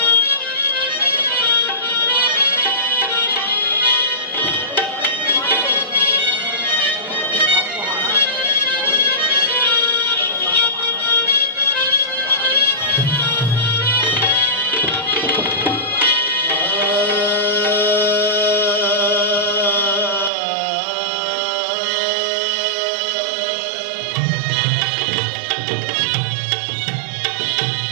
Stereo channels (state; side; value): drops out; left; at 20.3 s